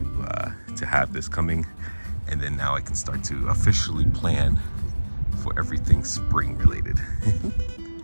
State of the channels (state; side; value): inverted; both; correlation -1.00